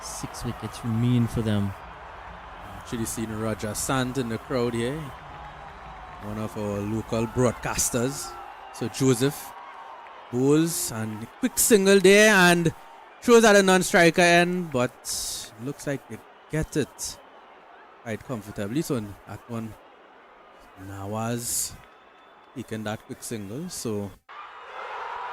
6 wickets remain for them. Actually seen Raja Sant in the crowd here, one of our local broadcasters. So Joseph bowls and quick single there and throws at a non-striker end, but looks like they get it quite comfortably. So that one, Nawaz taking that quick single. So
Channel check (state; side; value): identical; both; correlation 1.00